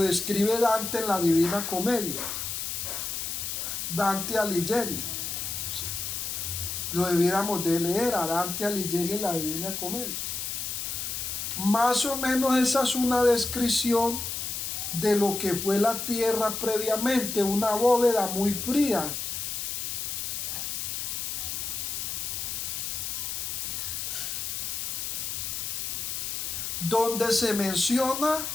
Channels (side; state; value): left; noise; hiss, 3 dB below the sound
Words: Dante en la Divina Comedia. Dante Alighieri. ¿Sí? Lo debiéramos de leer a Dante Alighieri en la Divina Comedia. Más o menos esa es una descripción de lo que fue la tierra previamente, una bóveda muy fría, donde se menciona